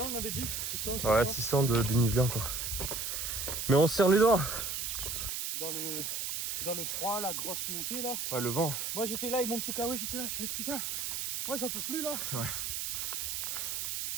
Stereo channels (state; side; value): noise; right; hiss, 2 dB below the sound